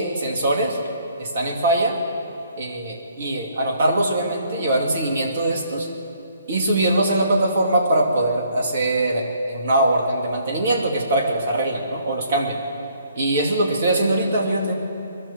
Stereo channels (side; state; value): both; inverted; correlation -0.65